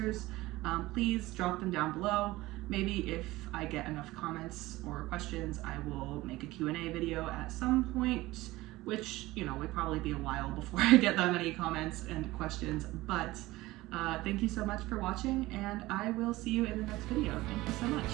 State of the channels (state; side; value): quieter; left; 18.7 dB